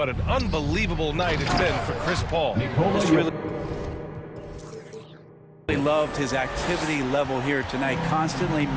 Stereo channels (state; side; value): identical; both; correlation 1.00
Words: an unbelievable night it's been for Chris Paul. He loved his activity level here tonight, constantly